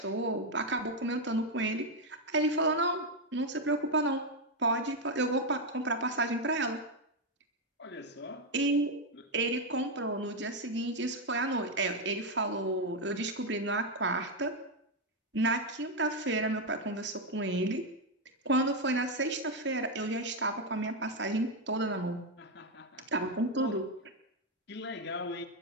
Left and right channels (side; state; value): both; normal; correlation 0.04